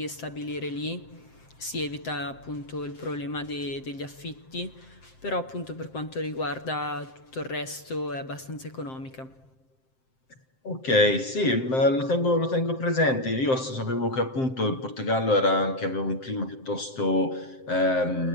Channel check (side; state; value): right; late; 7.7 ms